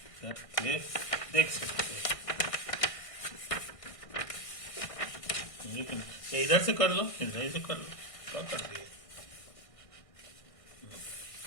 करके देख सकते हैं। इधर से कर लो, इधर से कर लो, क्या कर दिए।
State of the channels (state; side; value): late; right; 1.6 ms